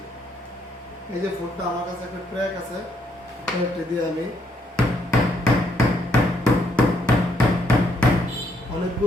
এই যে ফোনটা আমার কাছে একটা ট্র্যাক আছে, ট্র্যাকটি দিয়ে আমি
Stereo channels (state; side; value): normal; both; correlation 0.73